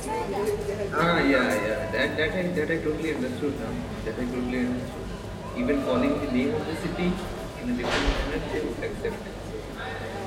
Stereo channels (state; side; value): identical; both; correlation 1.00